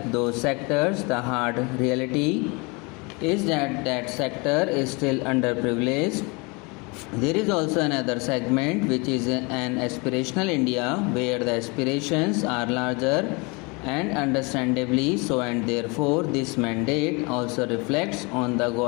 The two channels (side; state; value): right; quieter; 28.6 dB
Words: those sectors, the hard reality is that that sector is still underprivileged. There is also another segment which is an aspirational India where the aspirations are larger and understandably so, and therefore this mandate also reflects on the